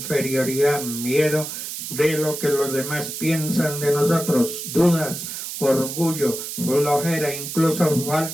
miedo de lo que los demás piensan de nosotros, dudas, orgullo, flojera, incluso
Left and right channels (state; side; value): noise; right; hiss, 7 dB below the sound